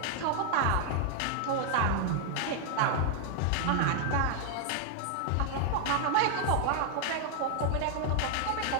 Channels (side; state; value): both; different; correlation 0.00